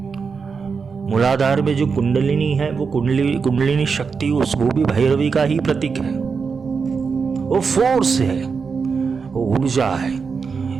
मूलाधार में जो कुंडलिनी है, वो कुंडलिनी शक्ति, वो भी भैरवी का ही प्रतीक है। वो फोर्स है, वो ऊर्जा है।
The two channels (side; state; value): left; quieter; 5.4 dB